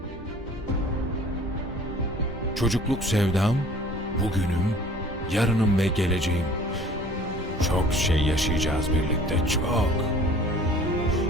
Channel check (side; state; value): both; normal; correlation 0.50